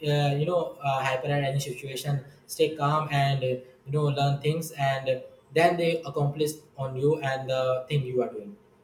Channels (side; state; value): both; identical; correlation 1.00